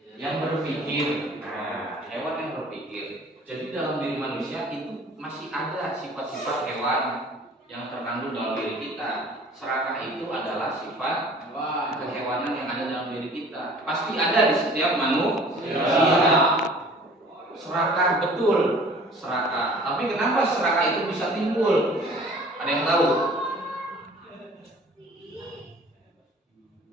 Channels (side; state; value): both; normal; correlation 0.49